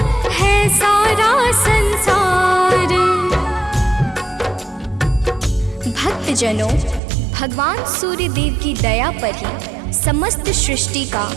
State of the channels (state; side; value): drops out; left; at 7.0 s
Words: है सारा संसार। भक्तजनों, भगवान सूर्य देव की दया पर ही समस्त सृष्टि का